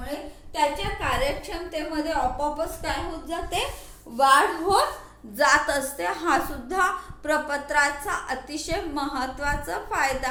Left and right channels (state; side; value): identical; both; correlation 1.00